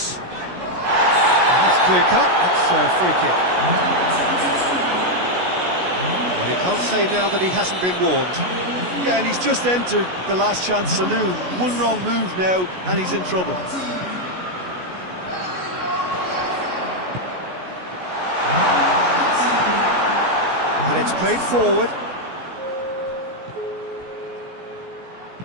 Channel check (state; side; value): late; left; 16 ms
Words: That's clear cut, that's a free kick. Well, he can't say now that he hasn't been warned. Yeah, and he's just entered the last chance saloon. One wrong move now, and he's in trouble. And it's played forward.